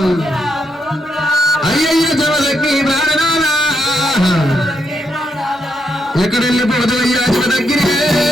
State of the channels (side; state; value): both; normal; correlation 0.79